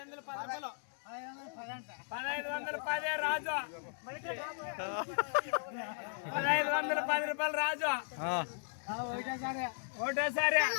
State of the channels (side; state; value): right; silent; digital silence